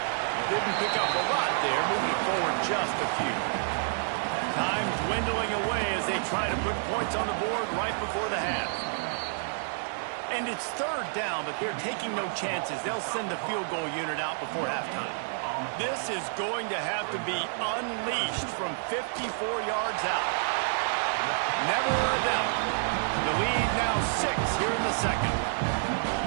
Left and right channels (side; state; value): left; silent; 58 dB below the other